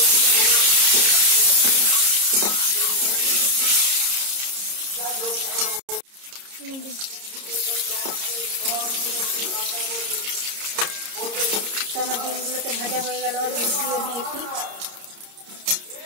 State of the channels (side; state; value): left; late; 30 ms